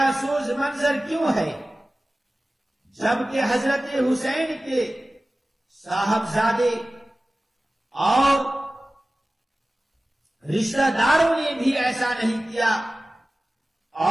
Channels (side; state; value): both; normal; correlation 0.97